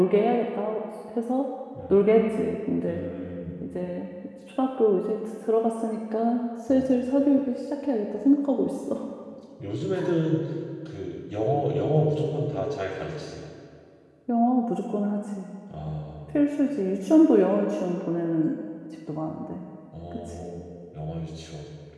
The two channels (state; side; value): identical; both; correlation 1.00